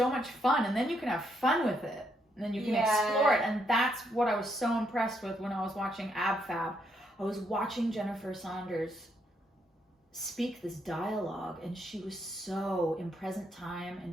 much fun. And then you can have fun with it. And then you can explore it. And that's what I was so impressed with when I was watching AbFab. I was watching Jennifer Saunders speak this dialogue, and she was so in present time, and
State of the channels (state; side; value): normal; both; correlation 0.75